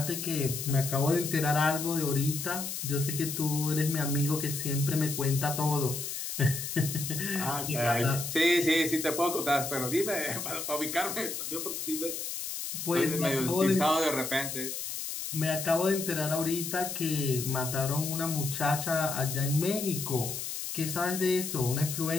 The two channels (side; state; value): left; noise; hiss, 5 dB below the sound